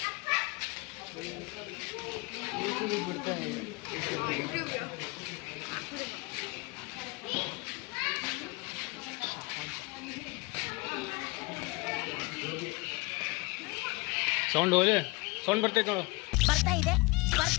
ಸೌಂಡ್ ಹೋಗಿ ಸೌಂಡ್ ಬರ್ತೈತೆ ನೋಡು. ಬರ್ತಾ ಇದೆ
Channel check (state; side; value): quieter; right; 25.9 dB